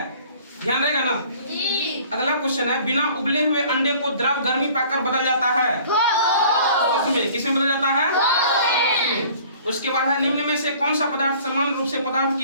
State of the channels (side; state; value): both; inverted; correlation -0.51